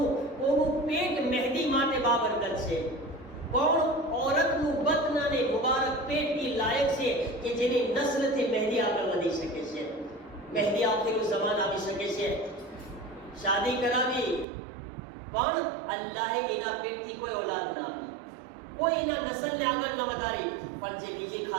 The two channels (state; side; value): drops out; left; at 14.5 s